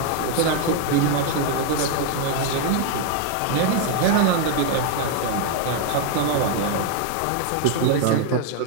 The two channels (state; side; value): different; both; correlation 0.00